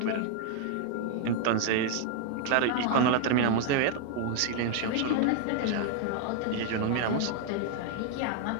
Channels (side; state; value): both; different; correlation 0.00